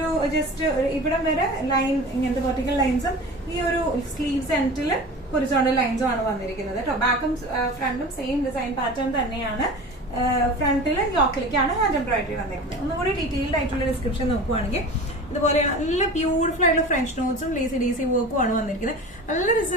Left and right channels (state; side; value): normal; both; correlation 0.35